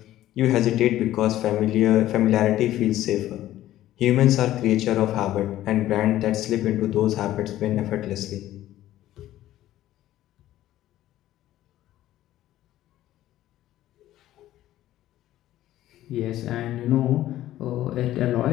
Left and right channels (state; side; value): quieter; right; 14.0 dB